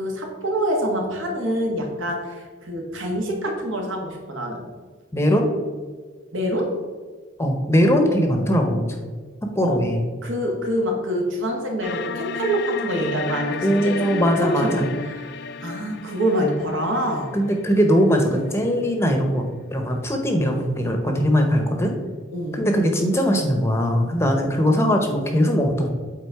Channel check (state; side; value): normal; both; correlation 0.64